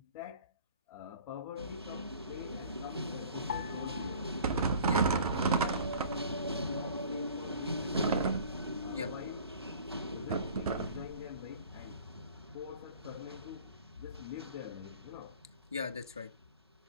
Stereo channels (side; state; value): both; inverted; correlation -0.48